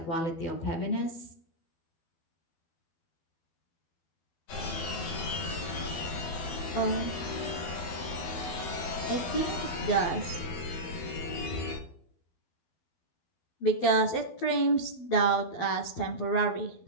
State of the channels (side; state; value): right; late; 12 ms